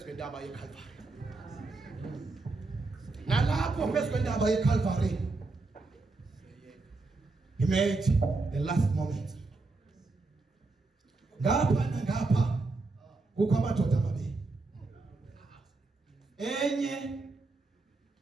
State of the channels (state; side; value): quieter; left; 3.5 dB